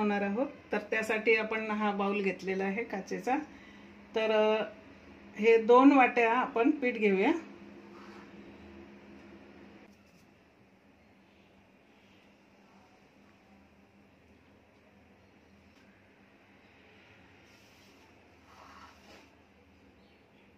आहोत. तर त्यासाठी आपण हा बाउल घेतलेला आहे काचेचा. तर हे 2 वाट्या आपण पीठ घेऊया.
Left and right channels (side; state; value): both; identical; correlation 1.00